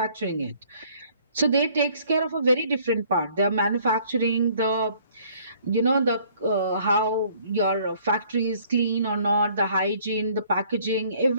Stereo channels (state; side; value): inverted; both; correlation -0.59